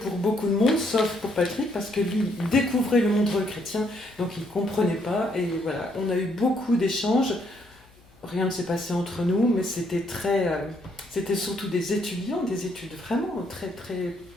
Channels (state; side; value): noise; left; hum, 28 dB below the sound